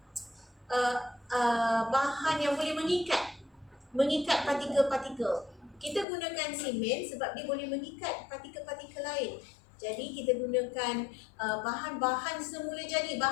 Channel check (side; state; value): right; drops out; at 6.1 s